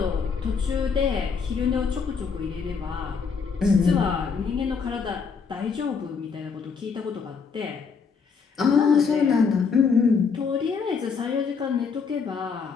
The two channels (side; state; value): right; quieter; 5.6 dB